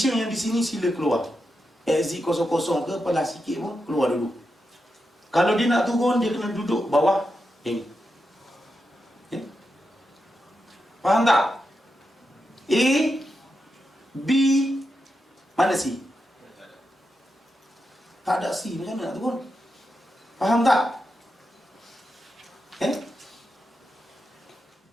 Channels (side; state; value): both; normal; correlation 0.87